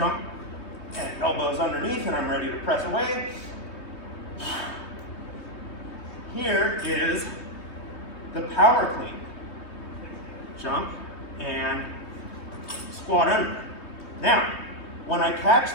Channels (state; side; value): late; right; 3.2 ms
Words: and elbows underneath, and I'm ready to press away. Here is the power clean. Jump and squat under. Now, when I